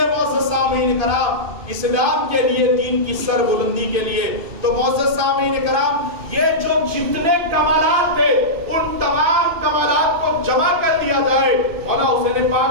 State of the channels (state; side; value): late; left; 2.5 ms